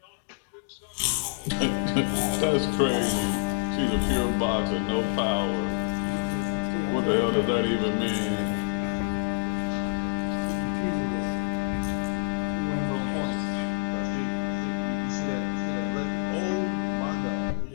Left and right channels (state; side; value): silent; right; 59 dB below the other